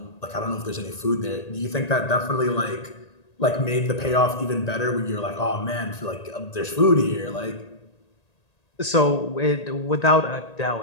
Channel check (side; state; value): right; late; 1.8 ms